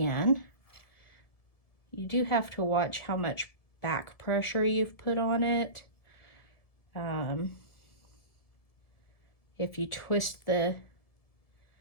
You do have to watch how much back pressure you've put on it. If you twist the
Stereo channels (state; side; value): late; right; 1.7 ms